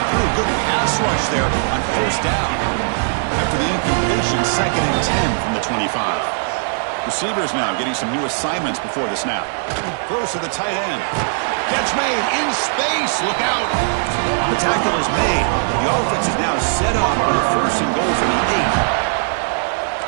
threw a good pass rush there on 1st down. After the incompletion, 2nd and 10 from the 25. Receivers now getting some new assignments before the snap. Throws to the tight end. Catch made in space. Look out. The tackle is made. The offense is now set up for the 1st and goal from the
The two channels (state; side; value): silent; left; digital silence